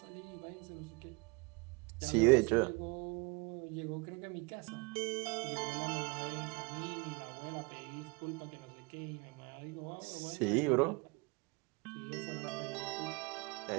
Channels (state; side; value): quieter; left; 29.1 dB